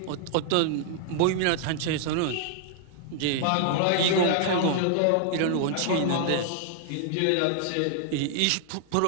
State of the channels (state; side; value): different; both; correlation -0.01